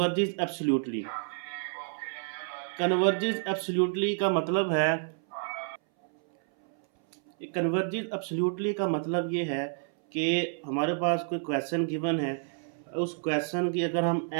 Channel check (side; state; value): left; silent; 58 dB below the other